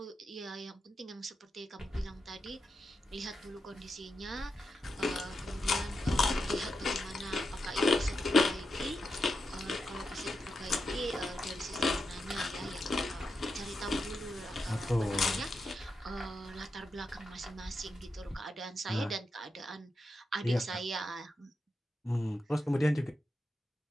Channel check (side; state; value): both; normal; correlation 0.87